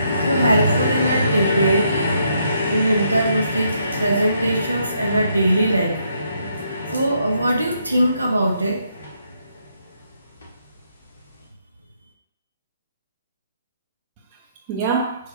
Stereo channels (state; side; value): inverted; both; correlation -0.74